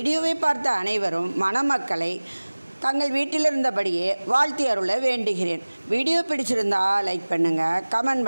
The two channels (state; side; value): inverted; both; correlation -1.00